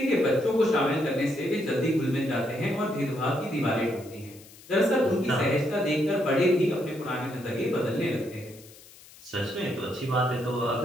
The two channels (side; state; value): left; noise; hiss, 22 dB below the sound